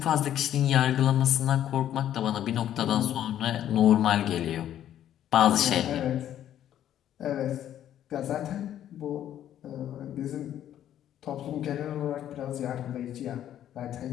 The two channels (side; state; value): right; quieter; 11.2 dB